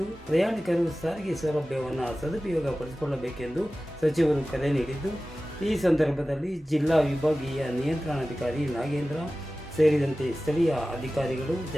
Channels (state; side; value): normal; both; correlation 0.96